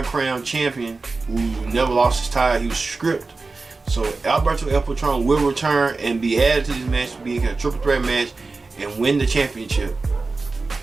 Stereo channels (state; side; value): quieter; left; 3.8 dB